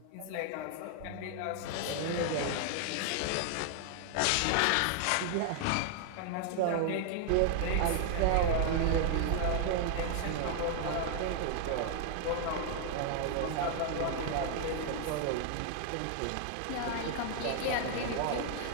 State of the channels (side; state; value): both; different; correlation 0.00